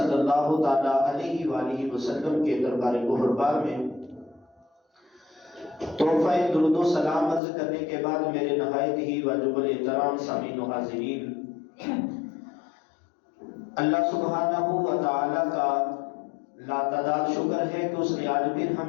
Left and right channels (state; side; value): drops out; right; at 7.4 s